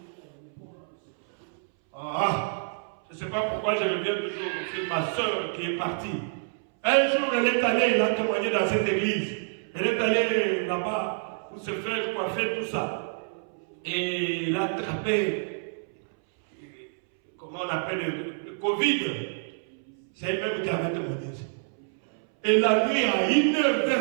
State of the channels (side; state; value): left; silent; 60 dB below the other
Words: Je ne sais pas pourquoi je reviens toujours sur ma soeur qui est partie. Un jour, elle est allée, elle a témoigné dans cette église. Elle est allée là-bas pour se faire coiffer, tout ça. Et elle a attrapé, comment on appelle le Covid. C'est elle-même qui avait témoigné. Et la nuit, à 1h,